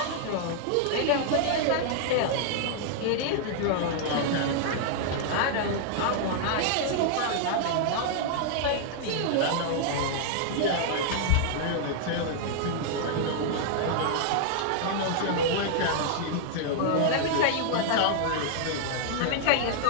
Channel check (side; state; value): both; different; correlation -0.01